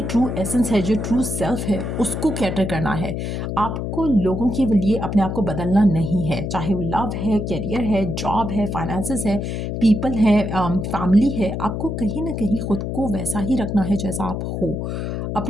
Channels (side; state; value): left; noise; hum, 3 dB below the sound